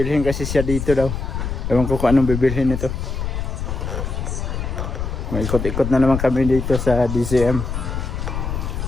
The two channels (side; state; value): left; noise; rumble, 4 dB below the sound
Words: kasi siya dito daw. Ewan ko kung anong bibilhin ito. May ikot-ikot na naman kami dito sa DCM.